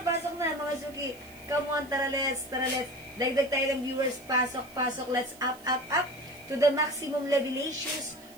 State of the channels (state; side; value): noise; right; hiss, 22 dB below the sound